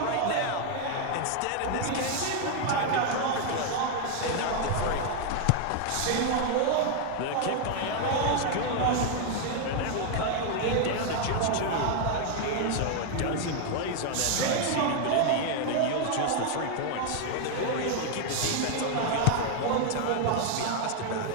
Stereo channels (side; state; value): both; different; correlation 0.00